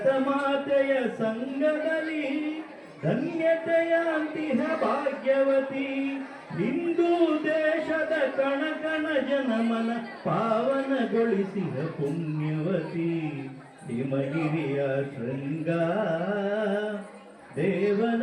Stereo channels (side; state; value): both; identical; correlation 1.00